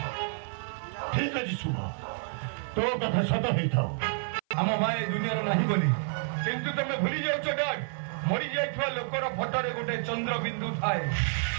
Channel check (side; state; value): left; silent; 55 dB below the other